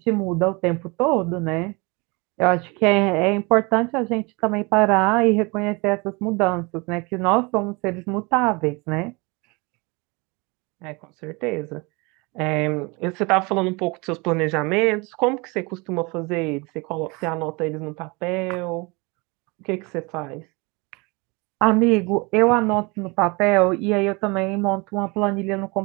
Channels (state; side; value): quieter; left; 27.2 dB